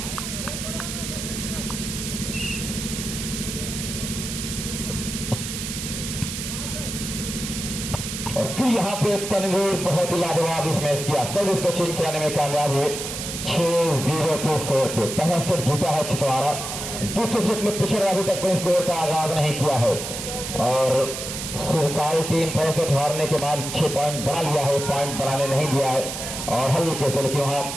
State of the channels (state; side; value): noise; right; hiss, 6 dB below the sound